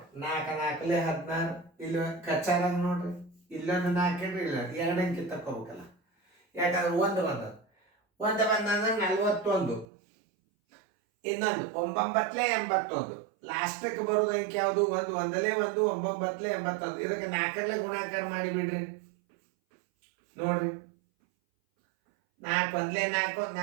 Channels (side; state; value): left; drops out; at 9.9 s